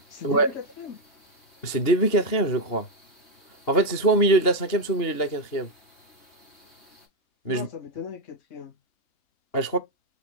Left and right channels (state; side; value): late; right; 2.9 ms